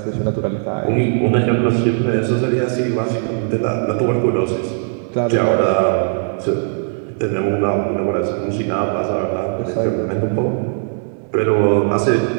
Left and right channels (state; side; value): silent; left; 66 dB below the other